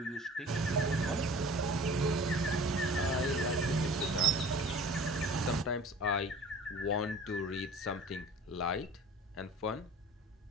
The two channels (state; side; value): normal; both; correlation 0.43